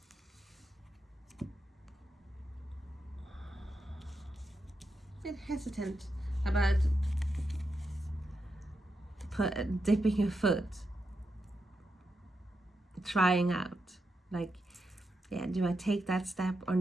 A bit hesitant about dipping your foot, trying out, like, yeah, do I take that step or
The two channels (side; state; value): both; normal; correlation 0.85